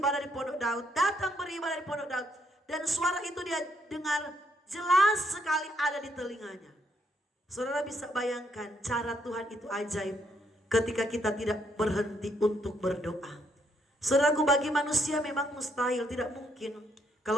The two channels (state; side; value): normal; both; correlation 0.73